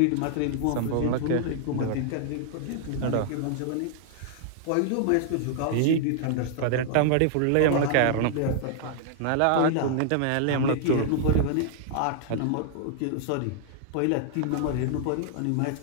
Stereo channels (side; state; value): both; different; correlation -0.01